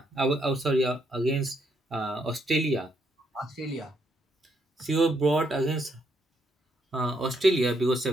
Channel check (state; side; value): normal; both; correlation 0.75